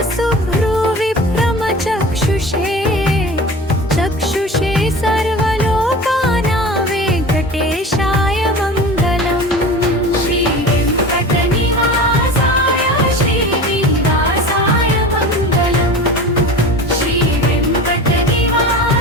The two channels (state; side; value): normal; both; correlation 0.35